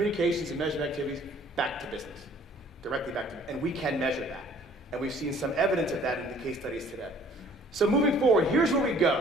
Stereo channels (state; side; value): normal; both; correlation 0.56